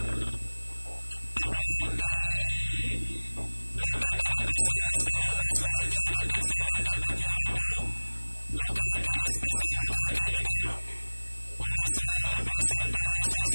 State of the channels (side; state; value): both; inverted; correlation -1.00